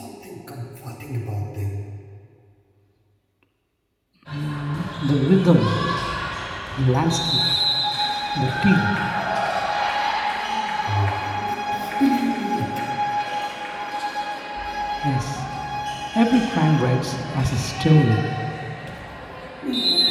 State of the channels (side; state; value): both; identical; correlation 1.00